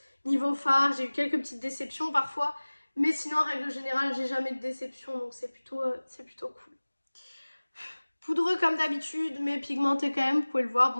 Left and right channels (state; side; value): inverted; both; correlation -1.00